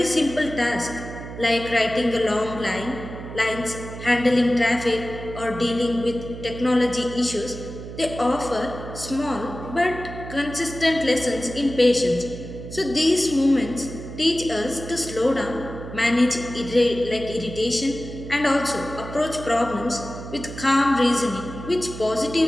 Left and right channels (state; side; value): noise; right; hum, 11 dB below the sound